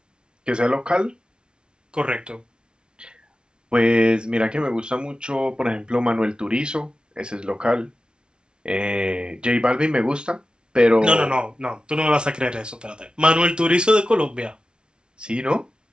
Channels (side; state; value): left; late; 0.055 ms